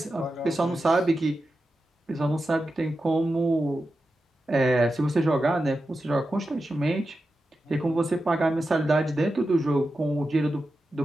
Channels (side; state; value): both; normal; correlation 0.91